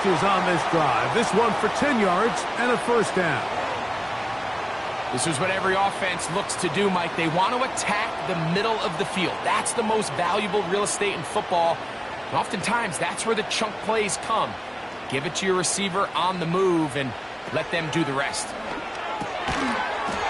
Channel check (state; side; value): identical; both; correlation 1.00